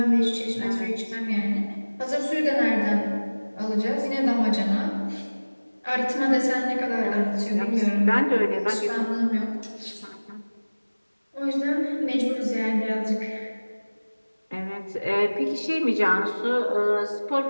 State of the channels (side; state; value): both; inverted; correlation -1.00